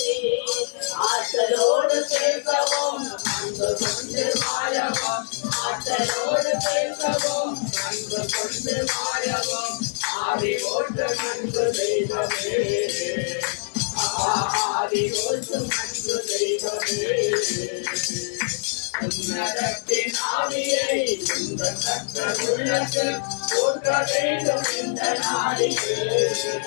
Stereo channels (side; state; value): right; silent; digital silence